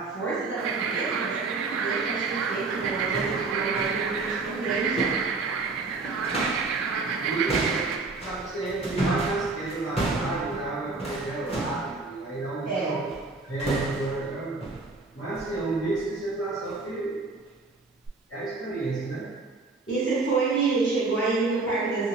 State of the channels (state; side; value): quieter; left; 3.8 dB